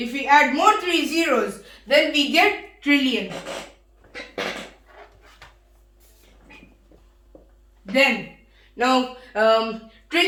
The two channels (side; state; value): both; identical; correlation 1.00